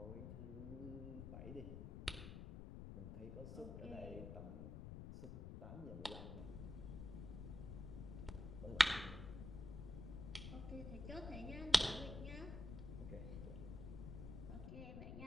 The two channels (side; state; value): left; noise; rumble, 7 dB below the sound